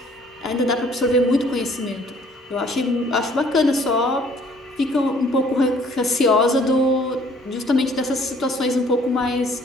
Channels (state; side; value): normal; both; correlation 0.59